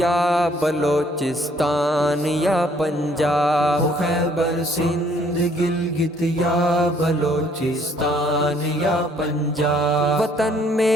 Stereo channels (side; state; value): both; normal; correlation 0.63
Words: بلوچستان یا پنجاب، ہو خیبر سندھ گلگت یا بلوچستان یا پنجاب، وطن